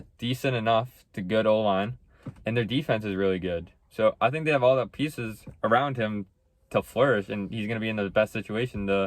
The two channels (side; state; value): both; identical; correlation 1.00